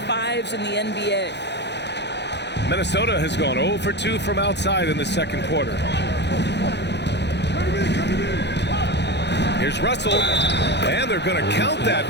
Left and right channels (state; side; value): late; right; 0.50 ms